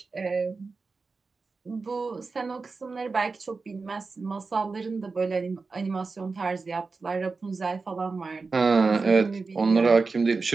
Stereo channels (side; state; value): left; quieter; 4.2 dB